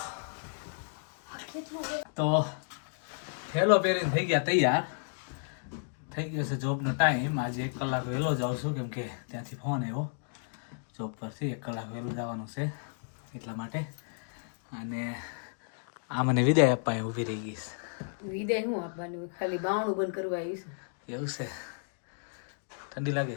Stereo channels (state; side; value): silent; right; digital silence